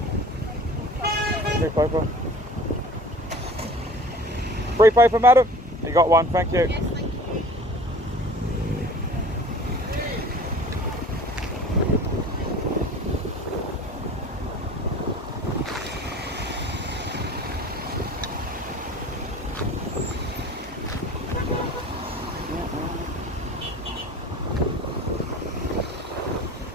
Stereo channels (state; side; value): normal; both; correlation 0.44